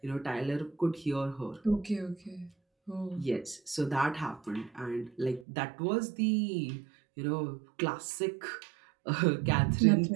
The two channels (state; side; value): drops out; left; at 5.5 s